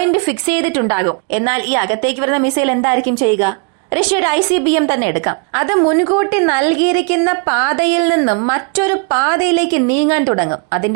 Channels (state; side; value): quieter; left; 36.8 dB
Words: ഫിക്സ് ചെയ്തിട്ടുണ്ടാകും. എന്നാൽ ഈ അകത്തേക്ക് വരുന്ന മിസൈൽ എന്തായിരിക്കും ചെയ്യുക? റഷ്യയുടെ ICBM തന്നെ എടുക്കാം. അത് മുൻകൂട്ടി നൽകിയിരിക്കുന്ന പാതയിൽ നിന്നും മറ്റൊരു പാതയിലേക്ക് നീങ്ങാൻ തുടങ്ങും.